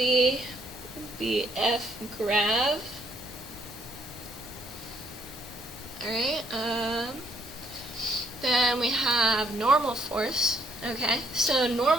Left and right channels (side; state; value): both; normal; correlation 0.69